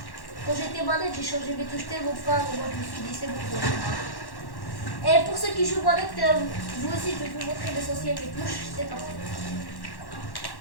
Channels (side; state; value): right; late; 1.1 ms